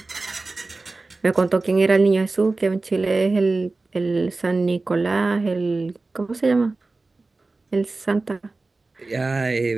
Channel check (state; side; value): quieter; left; 3.4 dB